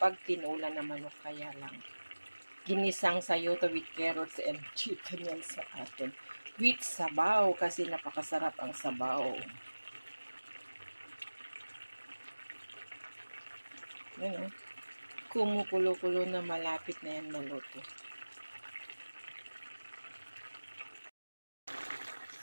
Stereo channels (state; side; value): inverted; both; correlation -1.00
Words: tinula na manok, kaya lang ginisang sayote with carrots and chicken yan sa atin. With sabaw kasi napakasarap ang sabaw. Yan o. Kumukulo-kulo na, malapit na yan maluto.